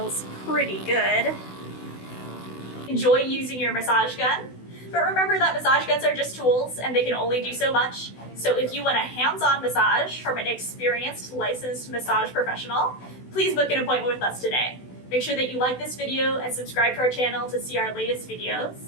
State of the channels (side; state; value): right; late; 16 ms